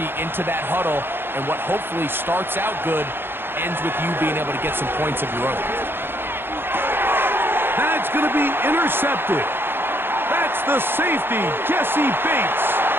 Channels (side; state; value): left; late; 0.10 ms